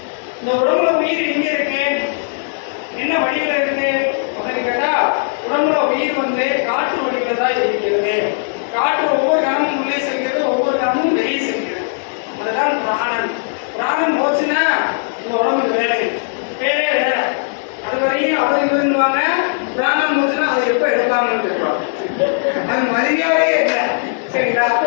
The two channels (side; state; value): right; silent; digital silence